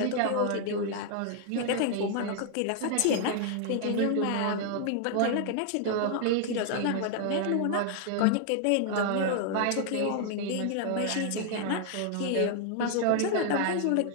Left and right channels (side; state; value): both; different; correlation 0.00